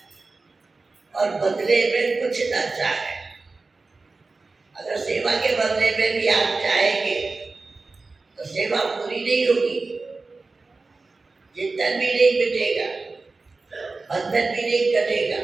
और बदले में कुछ न चाहे। अगर सेवा के बदले में भी आप चाहेंगे तो सेवा पूरी नहीं होगी, चिंतन भी नहीं मिटेगा, बंधन भी नहीं कटेगा।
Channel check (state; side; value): quieter; left; 3.7 dB